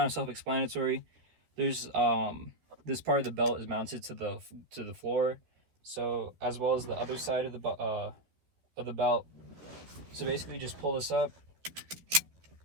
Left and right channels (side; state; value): left; late; 13 ms